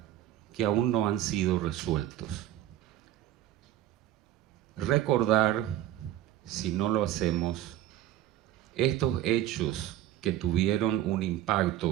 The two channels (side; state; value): left; quieter; 12.8 dB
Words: que aún no han sido resueltos. Recordar, si no lo hacemos, estos hechos que tuvieron un